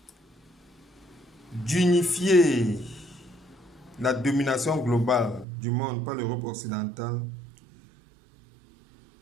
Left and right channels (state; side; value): drops out; left; at 5.5 s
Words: d'unifier la domination globale du monde par l'Europe occidentale